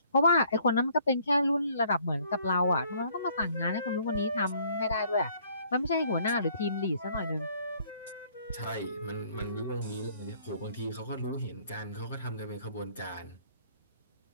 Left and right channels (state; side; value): inverted; both; correlation -0.61